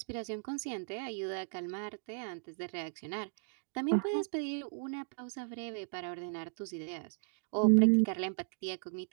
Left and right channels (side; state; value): left; silent; digital silence